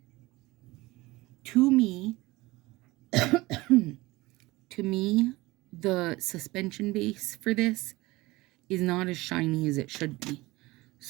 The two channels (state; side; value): quieter; left; 20.7 dB